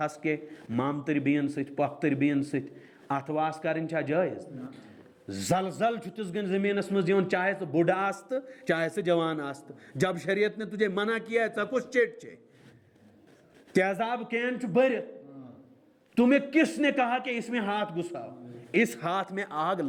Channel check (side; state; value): both; identical; correlation 1.00